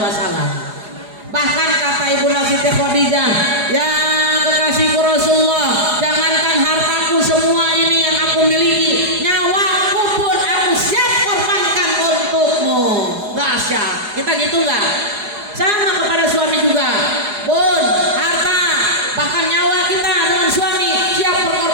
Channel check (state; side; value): late; left; 4.8 ms